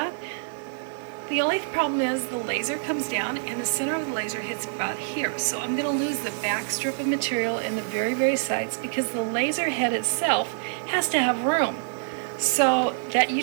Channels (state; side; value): silent; left; digital silence